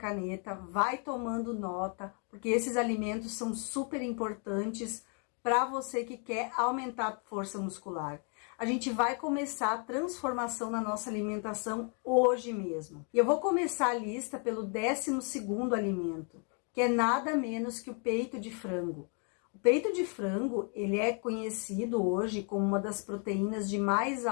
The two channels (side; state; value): right; quieter; 39.7 dB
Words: vai tomando nota, porque esses alimentos são super importantes para você que quer aumentar a força muscular. A gente vai começar a transformação na nossa alimentação hoje mesmo. E eu vou começar a lista pelo 12º alimento, que é nada menos que o peito de frango. O peito de frango, ele é conhecido hoje como uma das proteínas de mais